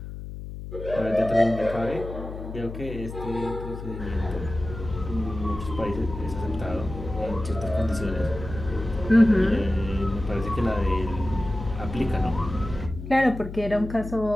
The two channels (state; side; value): noise; left; hum, 10 dB below the sound